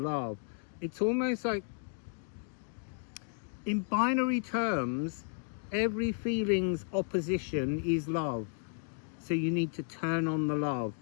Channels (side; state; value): right; silent; 55 dB below the other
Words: It's almost like, in binary terms, every feeling's opposition is love. So you need to turn on the love.